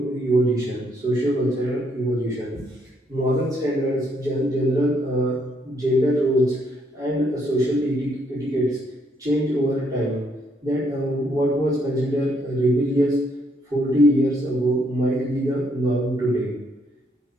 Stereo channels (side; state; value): both; normal; correlation 0.72